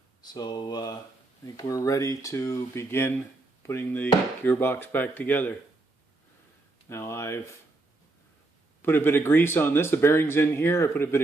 So I think we're ready to begin putting the gearbox back together. Now I've put a bit of grease on this. The bearing's in here. I put a bit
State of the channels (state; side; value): quieter; left; 3.1 dB